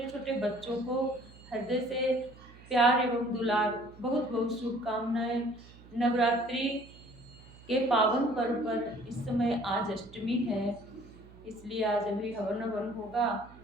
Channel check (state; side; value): noise; right; hum, 21 dB below the sound